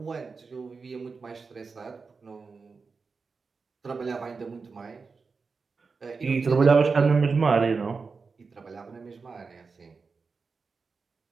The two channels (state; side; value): quieter; left; 4.7 dB